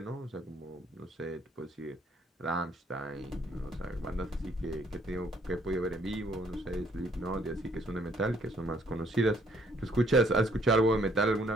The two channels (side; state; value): both; normal; correlation 0.65